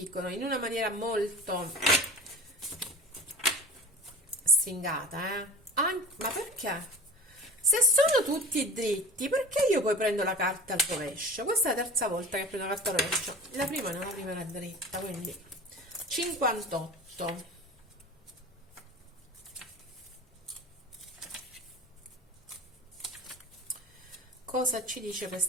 in una maniera molto stringata, ma perché? Se sono tutti dritti, perché io poi prendo la carta al rovescio? Questa è la terza volta che prendo la carta al rovescio. La prima no, la prima era dritta, quindi 58. Cosa ci dice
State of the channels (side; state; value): both; normal; correlation 0.36